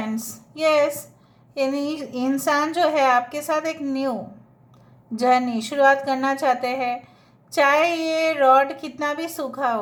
यस, यानी इंसान जो है आपके साथ एक न्यू जर्नी शुरुआत करना चाहते हैं। चाहे ये रॉड कितना भी सूखा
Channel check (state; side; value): identical; both; correlation 1.00